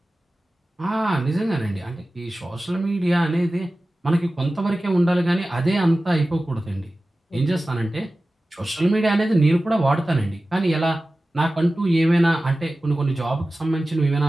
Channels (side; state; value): both; normal; correlation 0.96